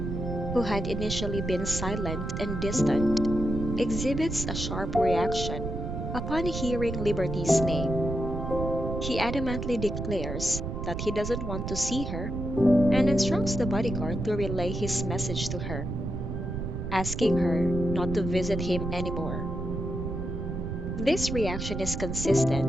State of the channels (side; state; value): right; noise; rumble, 4 dB below the sound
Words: who had initially been silent and distant, exhibits a sharp reaction upon hearing Liberty's name. He adamantly declares that he doesn't want to see her and instructs the bodyguard to relay his message to her, asking her not to visit him anymore. This reaction is